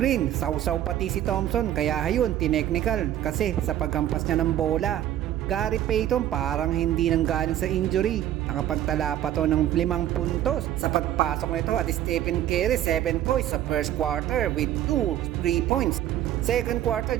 Sausaw pati si Thompson, kaya ayun, tinechnical kasi sa paghampas niya ng bola. Gary Payton parang hindi nang galing sa injury. Nakapagtala pa to ng 5 puntos sa pagpasok nito at Stephen Curry 7 points sa first quarter with 3 points. Second quarter,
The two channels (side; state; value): left; quieter; 12.1 dB